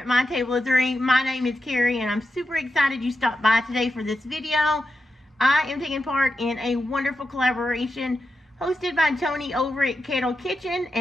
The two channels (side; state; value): both; normal; correlation 0.89